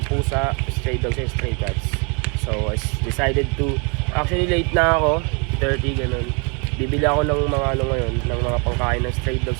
pusa, stray dogs and stray cats. So I decided to, actually late na ako, 30 ganun. Bibili ako ng mga ngayon, ng mga pangkain ng stray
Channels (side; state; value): left; quieter; 34.0 dB